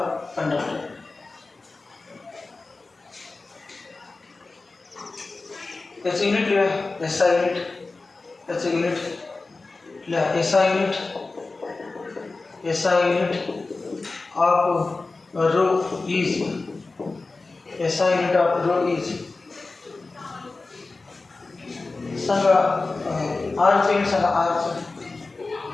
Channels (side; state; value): right; quieter; 3.6 dB